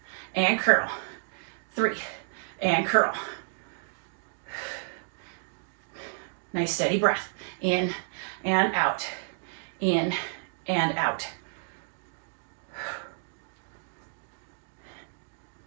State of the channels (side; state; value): left; silent; digital silence